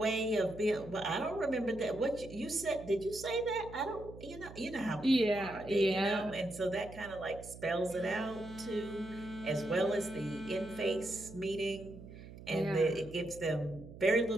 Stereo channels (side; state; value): right; noise; hum, 15 dB below the sound